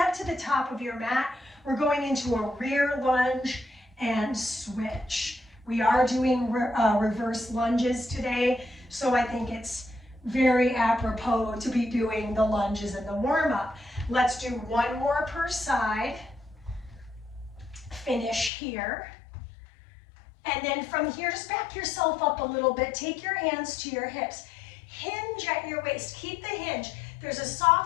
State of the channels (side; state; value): right; drops out; at 18.5 s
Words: to the top of your mat. We're going into a rear lunge and switch. We are doing reverse lunges today, so I think it's very apropos to be doing the lunges in the warm-up. Let's do 1 more per side. Finish here. And then from here, just back yourself up a little bit. Take your hands to your hips. Hinge at your waist. Keep the hinge. There's a